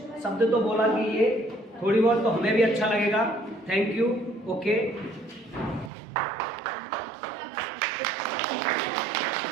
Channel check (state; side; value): drops out; left; at 5.9 s